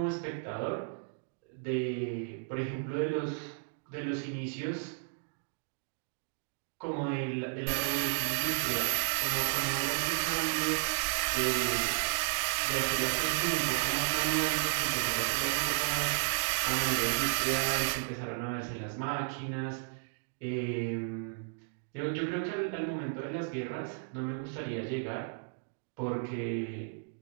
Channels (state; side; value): silent; left; digital silence